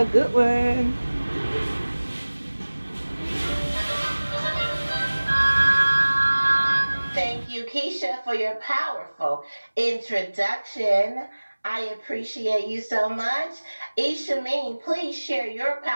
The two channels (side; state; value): both; inverted; correlation -1.00